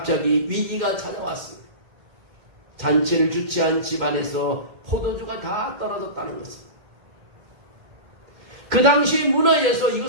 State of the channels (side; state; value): left; late; 2.1 ms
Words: 위기가 찾아왔습니다. 잔치를 주최한 집안에서 포도주가 다 떨어졌다는 것입니다. 그 당시 문화에서